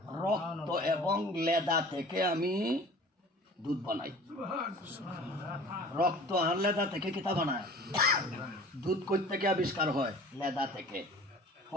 রক্ত এবং লেদা থেকে আমি দুধ বানাই। রক্ত আর লেদা থেকে কিতা বানায়? দুধ কই থেকে আবিষ্কার হয়? লেদা থেকে।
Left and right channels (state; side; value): normal; both; correlation 0.44